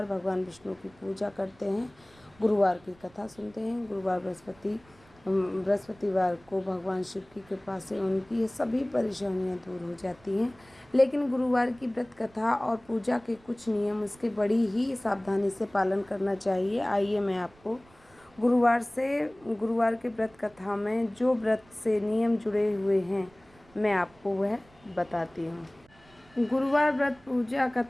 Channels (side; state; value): right; noise; rumble, 28 dB below the sound